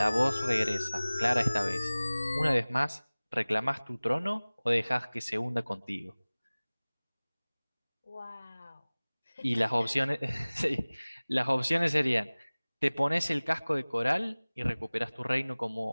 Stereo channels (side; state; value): both; inverted; correlation -1.00